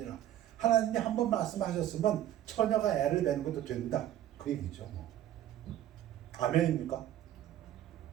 하나님이 한번 말씀하셨으면 처녀가 애를 배는 것도 된다, 그 얘기죠. 아멘입니까?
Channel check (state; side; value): quieter; left; 12.2 dB